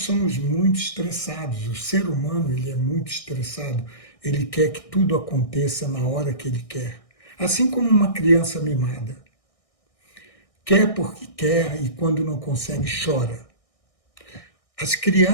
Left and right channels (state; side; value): late; right; 1.6 ms